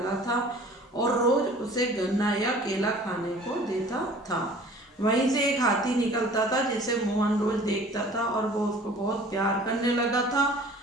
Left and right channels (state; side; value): normal; both; correlation 0.48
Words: था और रोज उसे गन्ना या केला खाने को देता था। वहीं से एक हाथी निकलता था जिसे मोहन रोज देखता था और वो उसको बहुत प्यार करने लगा था।